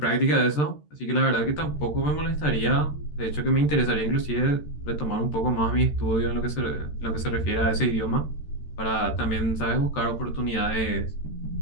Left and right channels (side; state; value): right; late; 13 ms